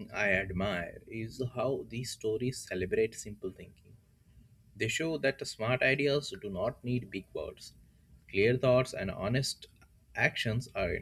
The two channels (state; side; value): identical; both; correlation 1.00